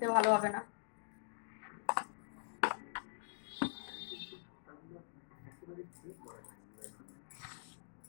ভালো হবে না।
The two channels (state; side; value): silent; right; digital silence